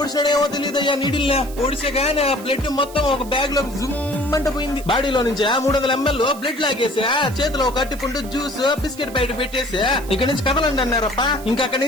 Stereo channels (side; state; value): right; noise; hiss, 18 dB below the sound